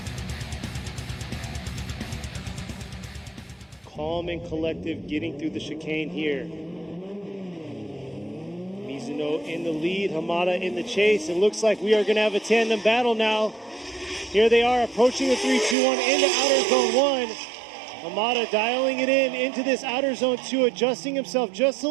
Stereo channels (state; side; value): drops out; left; at 15.8 s